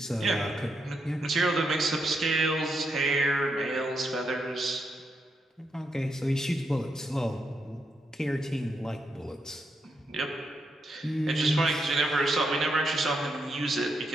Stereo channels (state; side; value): normal; both; correlation 0.81